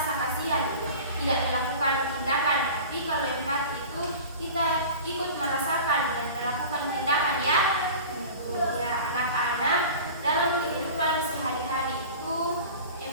kasihan, tidak melakukan tindakan. Tapi kalau empati itu kita ikut merasakan dan melakukan tindakan ya. Ya, anak-anak, dalam kehidupan sehari-hari itu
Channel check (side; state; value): both; inverted; correlation -0.37